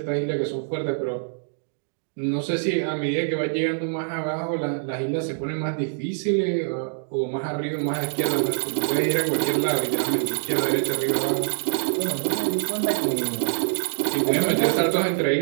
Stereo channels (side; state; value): left; silent; digital silence